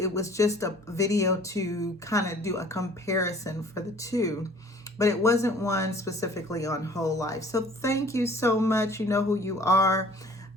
was just a video to kind of do a comparison for the two. But it wasn't one specifically on whole life. So thank you so much. You know who you are.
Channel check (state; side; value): normal; both; correlation 0.52